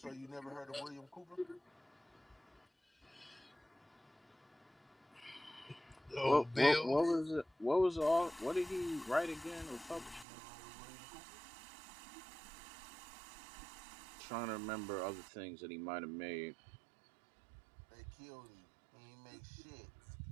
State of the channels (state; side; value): drops out; left; at 10.2 s